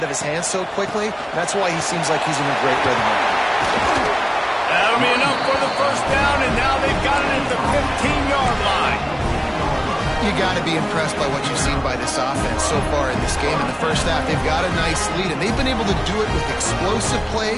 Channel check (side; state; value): both; identical; correlation 1.00